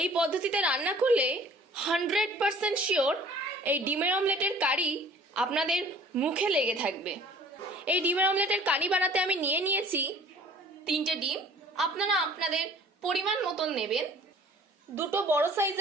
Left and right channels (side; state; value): both; normal; correlation 0.51